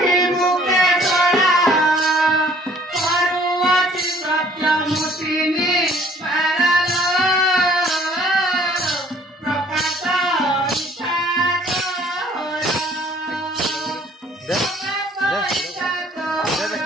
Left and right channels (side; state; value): both; normal; correlation 0.57